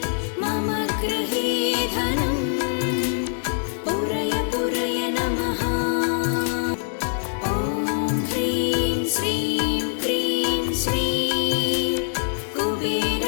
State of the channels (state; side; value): silent; right; digital silence